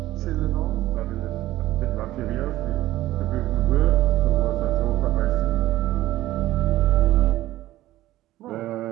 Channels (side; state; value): left; quieter; 15.4 dB